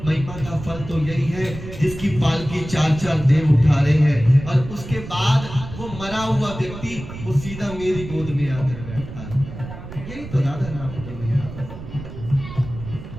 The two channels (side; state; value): right; noise; rumble, 11 dB below the sound